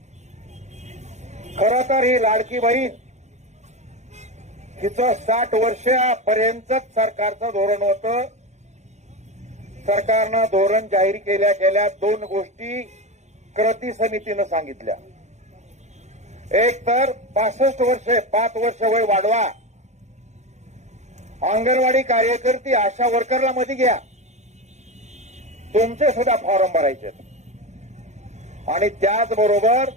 खरं तर ही लाडकी बहीण हिचं 60 वर्षापर्यंतच सरकारचं धोरण होतं। सरकारनं धोरण जाहीर केल्या गेल्या 2 गोष्टी कृती समितीनं सांगितल्या। एक तर 65 वर्षे 5 वर्ष वय वाढवा, अंगणवाडी कार्यकर्ती आशा वर्करला मध्ये घ्या, तुमचे सुद्धा फॉर्म भरायचे आणि त्याचबरोबर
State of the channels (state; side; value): late; left; 0.33 ms